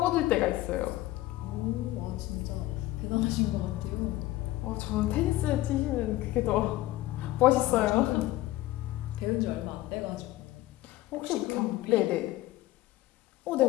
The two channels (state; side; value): quieter; right; 16.6 dB